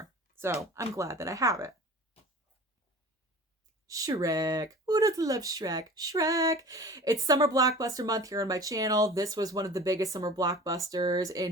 So I'm glad that I have it. Shrek. Who doesn't love Shrek? Shrek. It's summer blockbuster month here on my channel. This was one of the biggest summer blockbusters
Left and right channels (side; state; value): both; normal; correlation 0.41